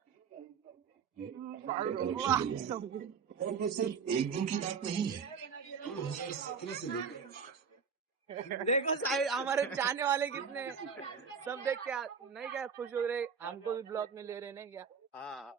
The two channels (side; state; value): left; quieter; 6.2 dB